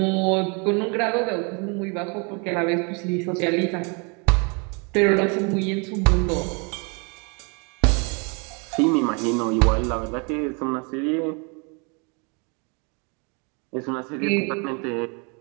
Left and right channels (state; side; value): quieter; left; 33.2 dB